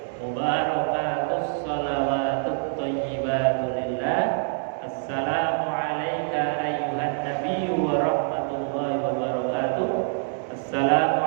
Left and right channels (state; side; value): silent; left; 58 dB below the other